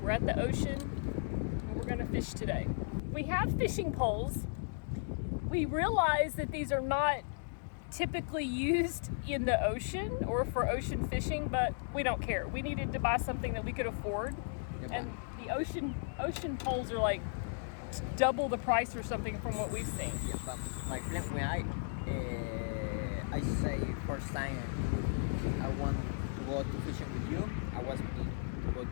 we're at the ocean and we're gonna fish today. We have fishing poles. We realize that these are not typically used in the ocean or for ocean fishing, but we don't care. We needed to buy something that we could afford. And the ocean poles are like double the price or something from what we've seen. Yeah, but my plan when I say first time I want to go to fishing with you, I was planning to go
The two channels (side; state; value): right; silent; digital silence